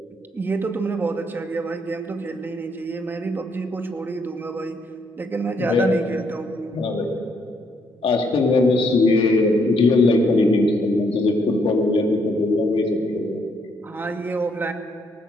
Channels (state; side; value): normal; both; correlation 0.72